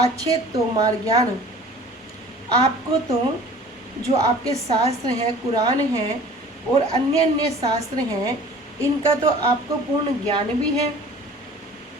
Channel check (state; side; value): normal; both; correlation 0.46